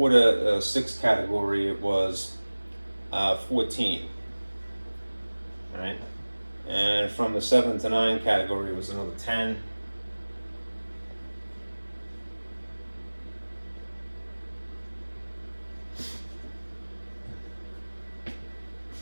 to 6 category, it was 14. Right? And from the 7 to 9 category, it was another 10.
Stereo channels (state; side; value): inverted; both; correlation -1.00